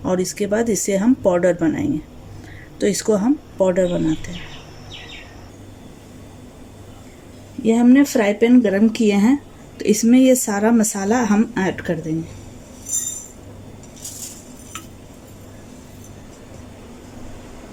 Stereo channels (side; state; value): both; identical; correlation 1.00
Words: और इसके बाद इसे हम पाउडर बनाएंगे। तो इसको हम पाउडर बनाते हैं। ये हमने फ्राई पैन गरम किए हैं, तो इसमें ये सारा मसाला हम ऐड कर देंगे।